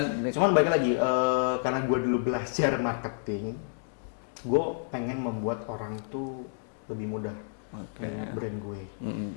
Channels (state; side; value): silent; right; digital silence